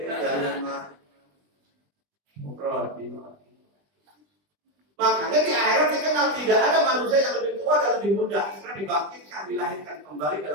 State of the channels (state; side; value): late; left; 20 ms